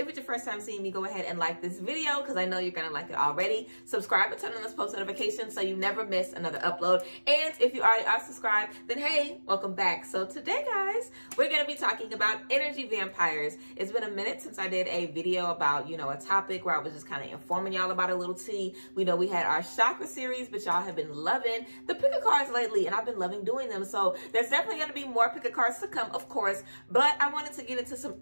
it's your first time seeing me, go ahead and like this video because I know you're gonna like it already. Subscribe and turn on those post notifications so you never miss another upload. And if you already are subscribed, then hey, welcome back. So today guys, we're gonna be talking about energy vampires. It's been a minute since I did a video about, a topic where I was just kind of informing y'all about a little tea. We know we had our chakra series, but y'all have been loving the pick a cards lately, and I've been loving doing them. So there's definitely gonna be more pick a cards to come, of course, but I wanted to get into some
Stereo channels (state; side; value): inverted; both; correlation -1.00